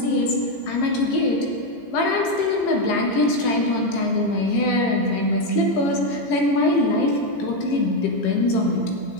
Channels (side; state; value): right; late; 15 ms